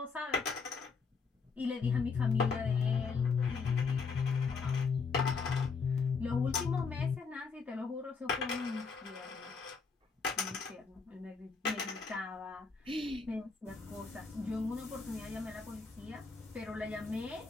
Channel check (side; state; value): right; quieter; 5.0 dB